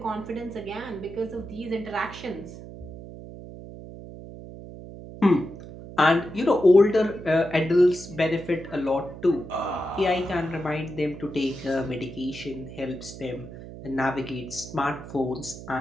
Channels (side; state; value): right; noise; hum, 13 dB below the sound